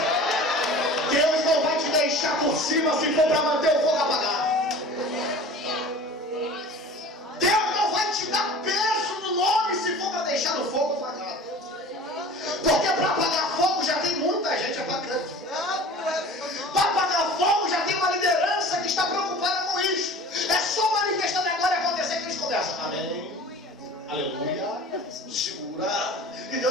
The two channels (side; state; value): both; normal; correlation 0.41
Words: Deus não vai te deixar por cima se for para manter o fogo apagado. Deus não vai te dar peso no nome se for para deixar o fogo apagado. Porque para apagar fogo já tem muita gente apagando. Para apagar fogo já tem uma liderança que está preocupada com isso. É só manifestando a glória acontecer que eles começam. Amém. Aleluia. Segura. E